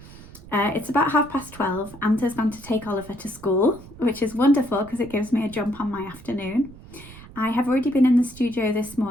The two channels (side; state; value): right; noise; rumble, 18 dB below the sound